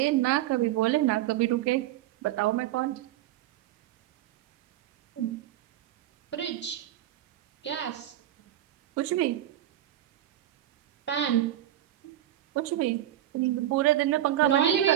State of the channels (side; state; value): left; quieter; 12.8 dB